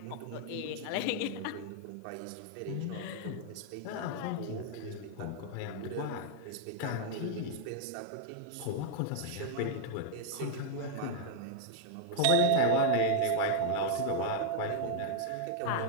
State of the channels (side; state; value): both; different; correlation -0.01